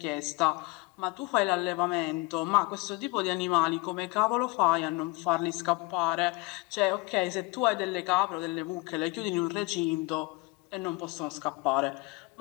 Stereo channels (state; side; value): quieter; right; 25.0 dB